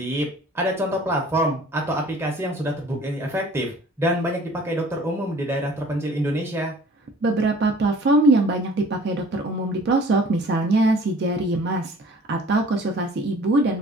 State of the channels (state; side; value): normal; both; correlation 0.50